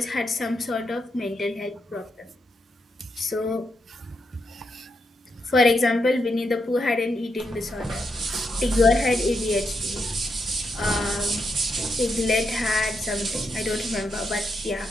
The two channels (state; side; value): normal; both; correlation 0.82